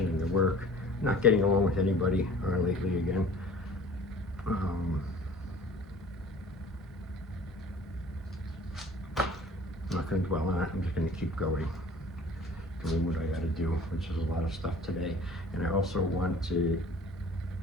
and the work. I'm not getting along with anybody lately again. I'm not gonna dwell on it, I'm just gonna keep going. Doing what I gotta do, which is a lot of stuff today. And I also want to get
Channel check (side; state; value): both; normal; correlation 0.47